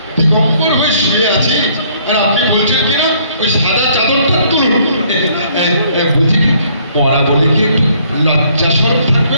দিগম্বর হয়ে শুয়ে আছি আর আপনি বলছেন কিনা ওই সাদা চাদরটা তুলুন। বলছি কি পড়া বলে কি একটু লজ্জা শরম থাকবে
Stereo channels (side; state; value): both; inverted; correlation -0.63